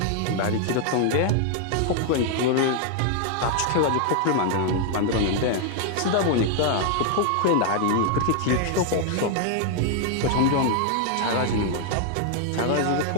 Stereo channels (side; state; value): both; different; correlation 0.00